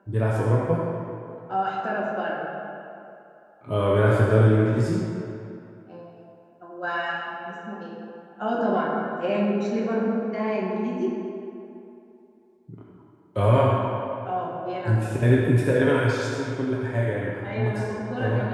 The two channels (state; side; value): identical; both; correlation 1.00